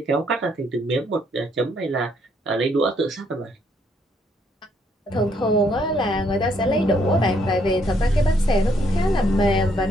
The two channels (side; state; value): both; normal; correlation 0.70